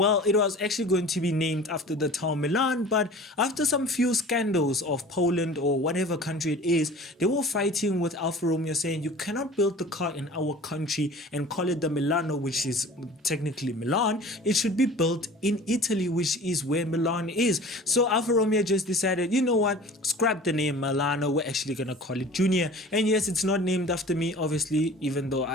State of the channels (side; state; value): both; normal; correlation 0.42